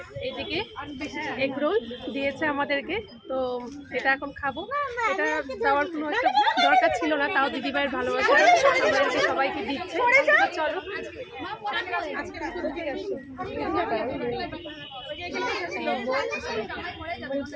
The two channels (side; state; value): both; identical; correlation 1.00